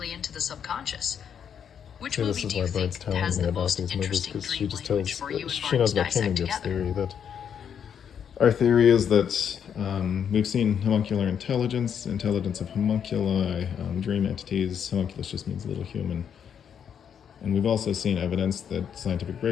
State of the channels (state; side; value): quieter; right; 8.1 dB